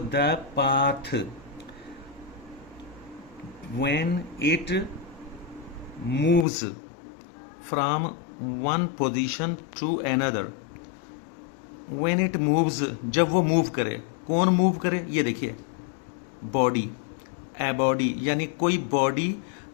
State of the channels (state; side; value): drops out; right; at 6.5 s